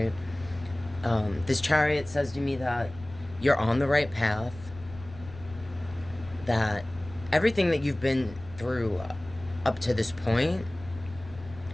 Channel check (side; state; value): left; noise; rumble, 17 dB below the sound